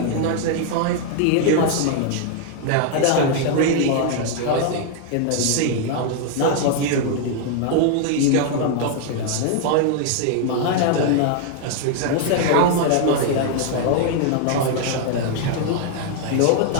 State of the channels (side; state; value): both; different; correlation 0.00